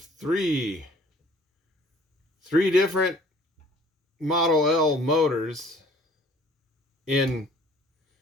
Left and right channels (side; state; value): both; normal; correlation 0.54